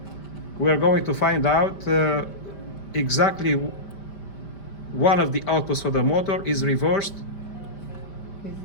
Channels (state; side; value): late; right; 5.1 ms